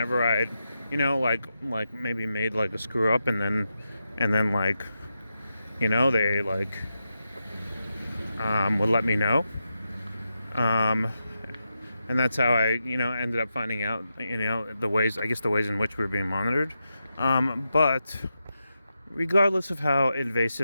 I'd maybe made a screw up, and then They like would let me know. Um, and that's how I, ended up finding out, the ways in which we were being monitored. But regardless of how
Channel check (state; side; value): inverted; both; correlation -0.88